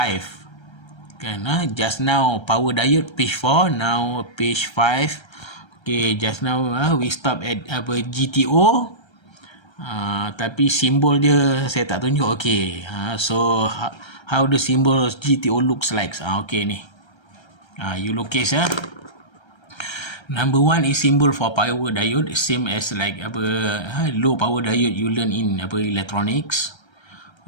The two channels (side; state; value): right; late; 1.3 ms